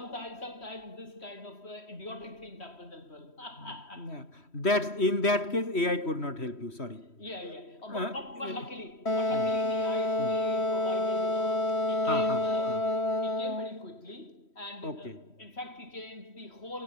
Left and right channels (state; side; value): late; right; 3.1 ms